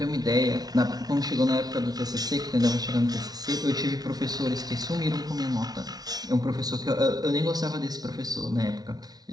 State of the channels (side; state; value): left; late; 0.19 ms